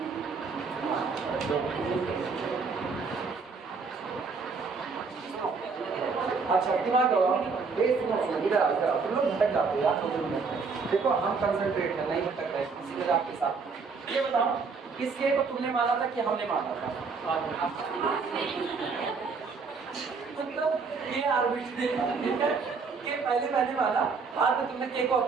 अच्छा दिमाग लगाओ, इधर आओ इधर आओ, तुम लोग भटक जाते हो यार 2 मिनट। देखो हम कंसंट्रेट है, नहीं भटक रहे किसी जगह आपके साथ। ये बताओ इस के को तुमने माना था कि हमने माना था? मतलब ये आर्बिट्रेरी के पहले मैंने माना, बाद में तुमने के को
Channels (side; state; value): left; quieter; 4.9 dB